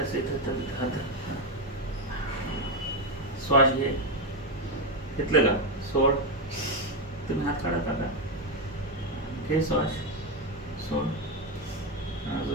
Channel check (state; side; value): normal; both; correlation 0.08